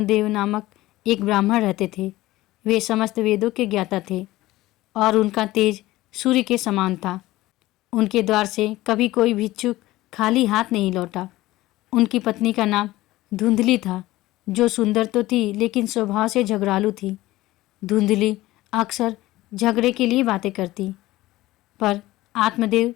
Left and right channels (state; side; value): quieter; right; 17.4 dB